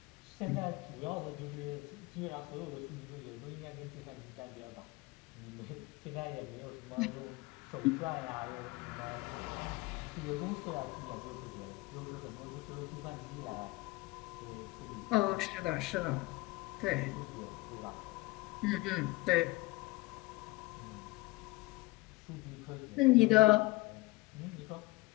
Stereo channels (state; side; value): quieter; right; 21.0 dB